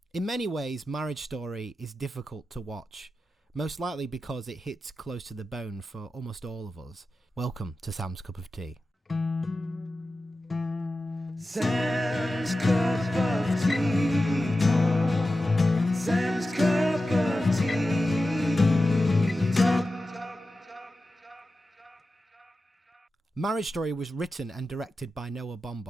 In many ways, Marriage Story is difficult to watch, most likely because it hits close to the bone for almost all of us. Welcome to Sam's Cup of Tea. Sam's Cup of Tea. Sam's Cup of Tea. Marriage Story was written and directed by Noah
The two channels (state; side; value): normal; both; correlation 0.93